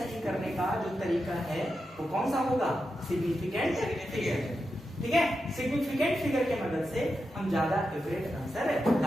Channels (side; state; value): both; normal; correlation 0.88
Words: करने का जो तरीका है वो कौन सा होगा, सिग्निफिकेंट फिगर। ठीक है, सिग्निफिकेंट फिगर के मदद से हम ज्यादा एक्यूरेट आंसर